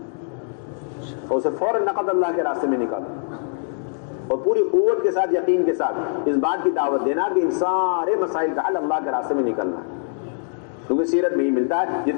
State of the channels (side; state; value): right; silent; digital silence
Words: اور اسے فوراً نقد اللہ کے راستے میں نکالو، اور پوری قوت کے ساتھ، یقین کے ساتھ اس بات کی دعوت دینا کہ ان سارے مسائل کا حل اللہ کے راستے میں نکلنا ہے۔ کیونکہ سیرت میں ہی ملتا ہے،